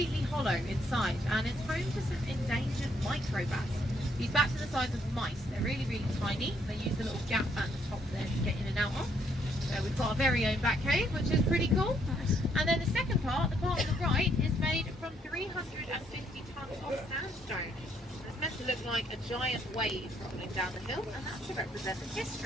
hollow inside, and it's home to some endangered microbats. These bats are the size of mice. They're really, really tiny. They use the little gap at the top there to get in and out of. So we've got our very own bat cave, which is pretty cool. Nice. And then the second part, the part on the right, is made from 350 tonnes of sandstone. It's meant to look like a giant wave rolling down the hill, and that's to represent the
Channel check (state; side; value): normal; both; correlation 0.70